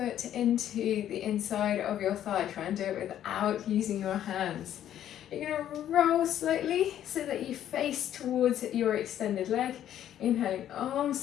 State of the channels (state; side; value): quieter; right; 11.0 dB